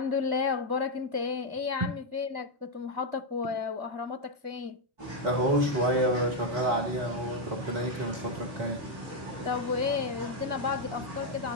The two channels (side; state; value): left; late; 4.2 ms